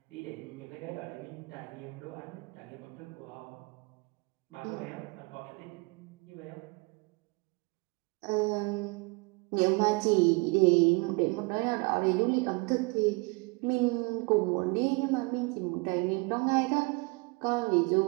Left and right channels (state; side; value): quieter; left; 28.8 dB